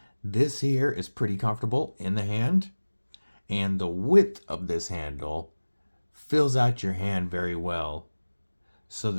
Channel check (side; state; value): both; inverted; correlation -1.00